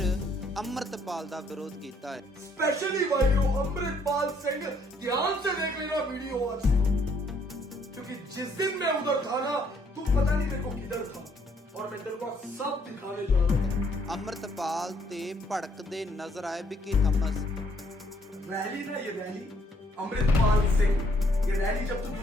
अमृतपाल ਦਾ ਵਿਰੋਧ ਕੀਤਾ ਹੈ। स्पेशली भाइयों अमृतपाल सिंह ध्यान से देख लेना वीडियो आज, क्योंकि जिस दिन मैं उधर था ना तू पता नहीं मेरे को किधर था और मैं तेरे को सब दिखाने जा रहा था। अमृतपाल ते भड़कते नजर आए विक्की थॉमस। रैली ना ये रैली अमृतपाल सिंह, ये रैली जब तू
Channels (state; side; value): normal; both; correlation 0.67